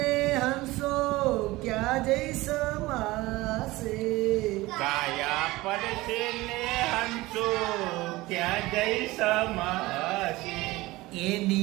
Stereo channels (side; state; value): left; quieter; 19.7 dB